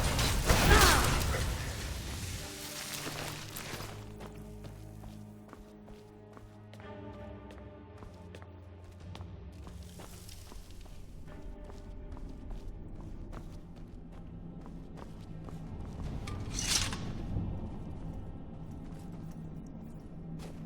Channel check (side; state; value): both; identical; correlation 1.00